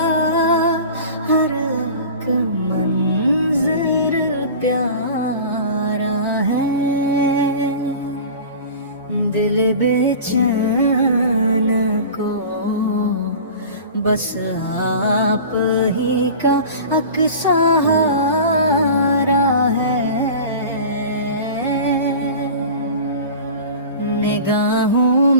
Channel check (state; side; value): inverted; both; correlation -0.37